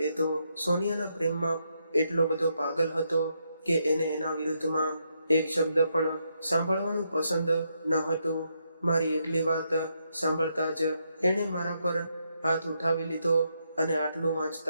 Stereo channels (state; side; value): inverted; both; correlation -0.79